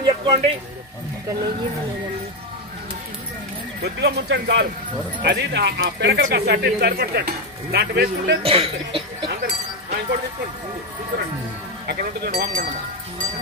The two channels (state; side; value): normal; both; correlation 0.09